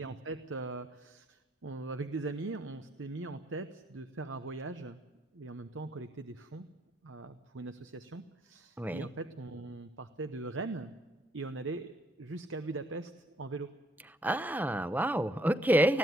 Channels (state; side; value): normal; both; correlation 0.69